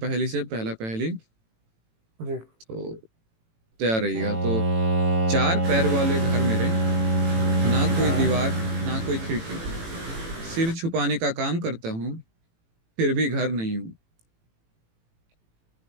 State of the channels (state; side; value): late; left; 18 ms